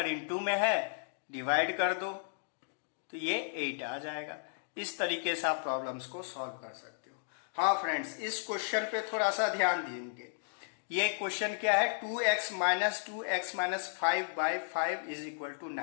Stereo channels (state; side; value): silent; right; digital silence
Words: इंटू में है, डिवाइड कर दो तो ये 8 आ जाएगा। इस तरीके से आप प्रॉब्लम्स को सॉल्व कर सकते हो। हाँ फ्रेंड्स, इस क्वेश्चन पे थोड़ा सा ध्यान देंगे। ये क्वेश्चन क्या है, 2x minus 2x minus 5/5 is equal to